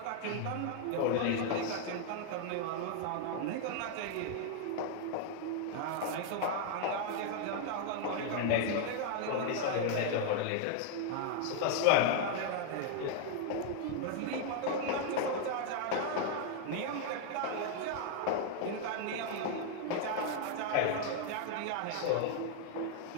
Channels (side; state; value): both; different; correlation 0.00